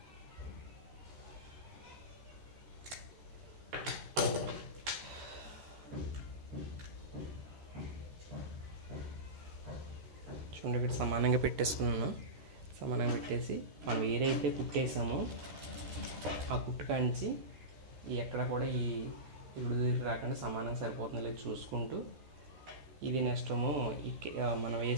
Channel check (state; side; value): late; left; 14 ms